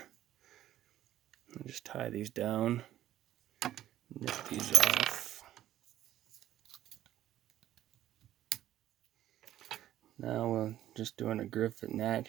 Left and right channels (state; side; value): quieter; left; 12.8 dB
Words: I'll just tie these down, nip these off. Now we're just doing a griffin gnat